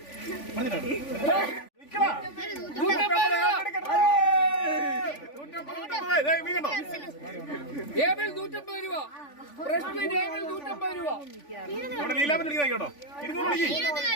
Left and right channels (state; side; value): late; right; 3.5 ms